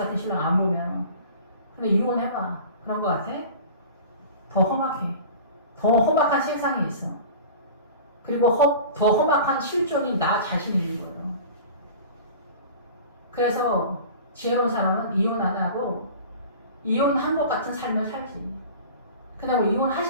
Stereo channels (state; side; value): inverted; both; correlation -0.39